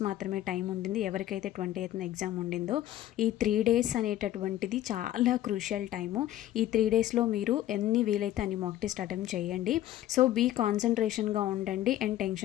మాత్రమే టైం ఉండింది. ఎవరికైతే 28th ఎగ్జామ్ ఉండిందో ఈ 3 డేస్ అనేటటువంటిది చాలా క్రూషియల్ టైము. ఈ 3 డేస్లో మీరు ఎన్ని వీలైతే అన్ని మాక్ టెస్ట్ అటెంప్ట్ చేయండి. సో బీ కాన్సన్ట్రేషన్గా ఉండండి అండ్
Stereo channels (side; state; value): right; quieter; 13.4 dB